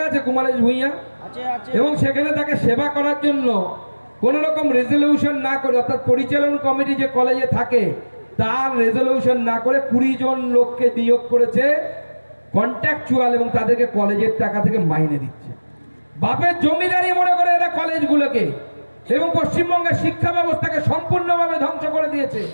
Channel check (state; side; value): inverted; both; correlation -1.00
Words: আছে কুমারেশ ভূঁইয়া, এবং সেখানে তাকে সেবা করার জন্য কোন রকম রেজলিউশন না করে, অর্থাৎ পরিচালন কমিটি যে কলেজে থাকে তার রেজলিউশন না করে 20 জন লোককে নিয়োগ করেছে কন্ট্রাকচুয়াল, এবং তাদেরকে কলেজের টাকা থেকে মাইনে দিচ্ছে। বাপের জমিদারি মনে করে এরা কলেজগুলোকে, এবং পশ্চিমবঙ্গের শিক্ষা ব্যবস্থাকে সম্পূর্ণভাবে ধ্বংস করে দিয়েছে।